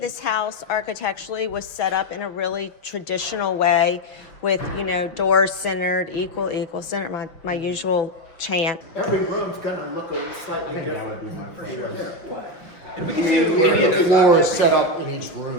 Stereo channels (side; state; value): right; late; 5.7 ms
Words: house architecturally was set up in a really traditional way with, you know, doors centered, equal, centered, my usual chant. Every room's gonna look a slightly different. That would be my preference. And we can do any of The those. floor is set up in each